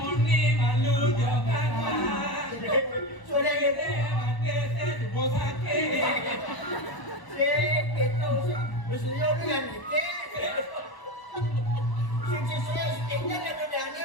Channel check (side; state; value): right; late; 1.0 ms